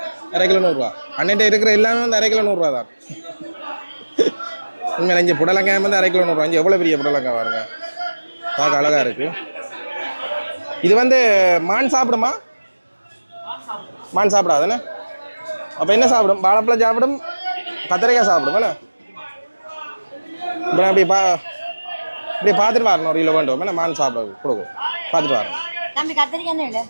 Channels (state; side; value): inverted; both; correlation -1.00